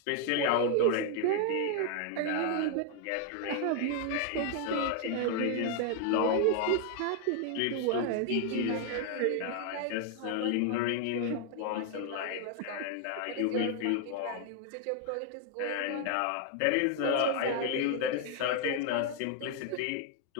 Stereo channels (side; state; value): both; different; correlation 0.00